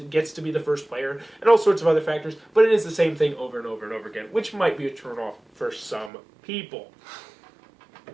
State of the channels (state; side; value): drops out; left; at 6.1 s